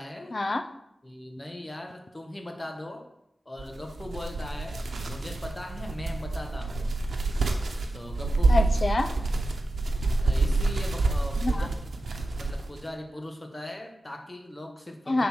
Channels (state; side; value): normal; both; correlation 0.92